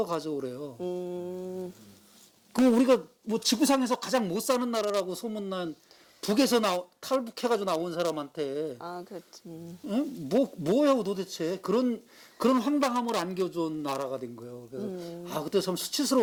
가져오래요. 그 우리가 뭐 지구상에서 가장 못 사는 나라라고 소문난 북에서 탈북해가지고 나온 사람한테 그렇지. 응? 뭐야 도대체 그런 황당함을 안겨준 나라가 된 거예요. 그래서 그때 참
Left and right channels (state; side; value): identical; both; correlation 1.00